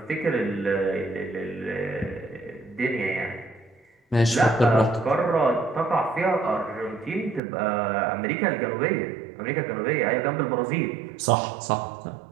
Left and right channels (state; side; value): drops out; left; at 7.4 s